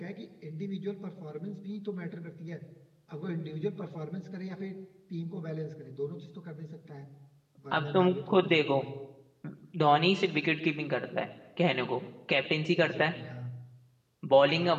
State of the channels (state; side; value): identical; both; correlation 1.00